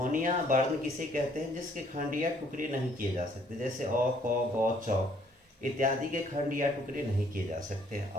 वर्ण किसे कहते हैं? जिसके खंड या टुकड़े नहीं किए जा सकते, जैसे अ, क, ग, च इत्यादि के खंड या टुकड़े नहीं किए जा सकते।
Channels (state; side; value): normal; both; correlation 0.63